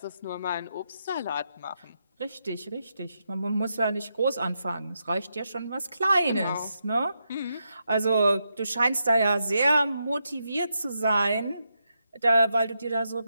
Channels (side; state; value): both; inverted; correlation -0.84